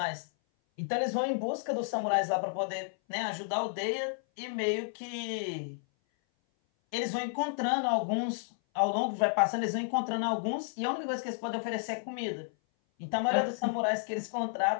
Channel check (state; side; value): silent; right; 56 dB below the other